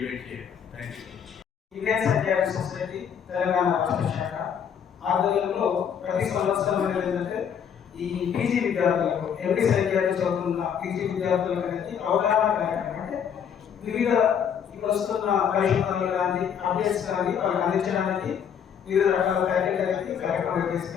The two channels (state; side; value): quieter; right; 8.0 dB